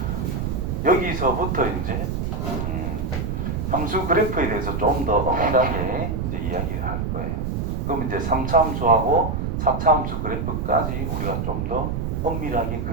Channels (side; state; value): right; noise; rumble, 1 dB below the sound